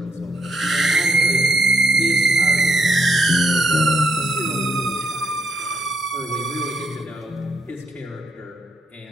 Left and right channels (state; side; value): normal; both; correlation 0.76